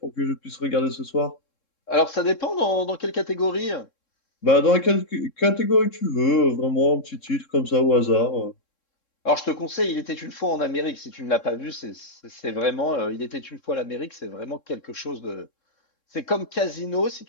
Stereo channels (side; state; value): right; late; 3.7 ms